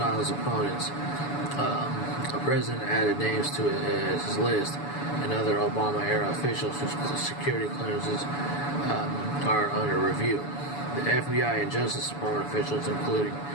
opponents, the president added names to his list and other Obama-era officials whose security clearances are under review. The FBI and Justice Department officials, including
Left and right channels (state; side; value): late; right; 7.0 ms